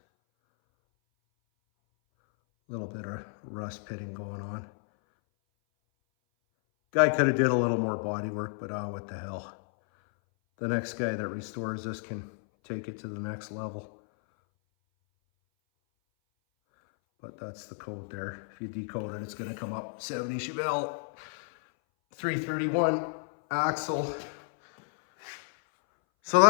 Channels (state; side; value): silent; right; 57 dB below the other